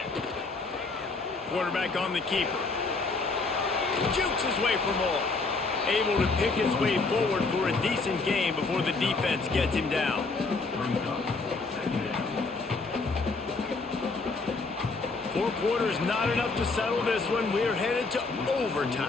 Quarterback on the keeper. Jukes his way for more. Able to pick his way forward for a decent game before the defense gets him down. 4 quarters not enough to settle this one. We're headed to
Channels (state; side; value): quieter; right; 3.9 dB